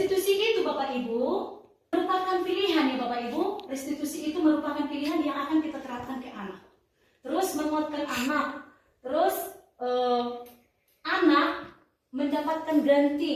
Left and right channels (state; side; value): identical; both; correlation 1.00